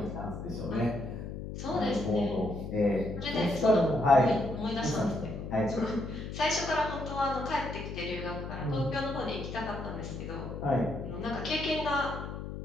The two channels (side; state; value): left; noise; hum, 7 dB below the sound